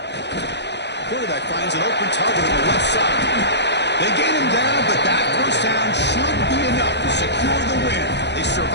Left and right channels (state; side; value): late; right; 0.50 ms